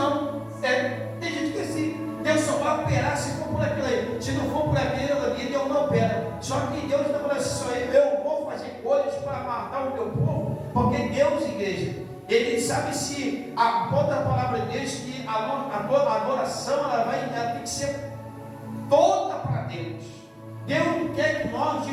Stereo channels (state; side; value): identical; both; correlation 1.00